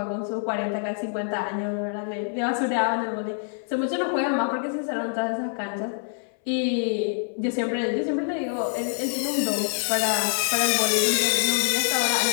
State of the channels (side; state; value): right; silent; 61 dB below the other